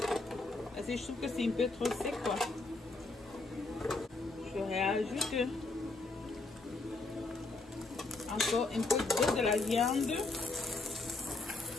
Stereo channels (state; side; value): quieter; right; 3.3 dB